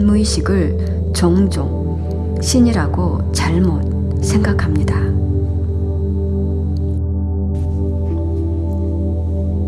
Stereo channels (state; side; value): identical; both; correlation 1.00